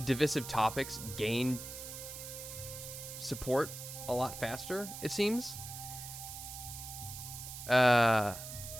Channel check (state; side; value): noise; right; hiss, 10 dB below the sound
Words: topics gain support a lot faster, it seems.